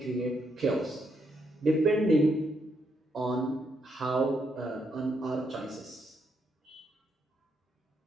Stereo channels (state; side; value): normal; both; correlation 0.78